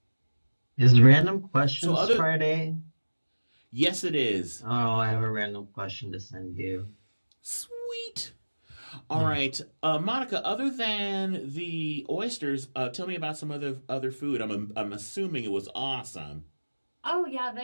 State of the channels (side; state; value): both; inverted; correlation -1.00